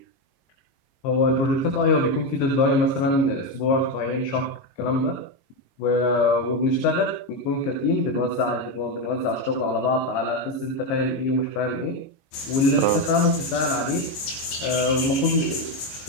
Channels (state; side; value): late; right; 22 ms